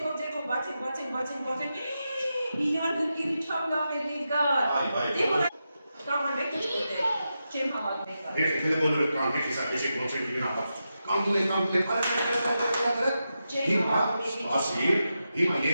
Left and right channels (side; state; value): both; inverted; correlation -0.88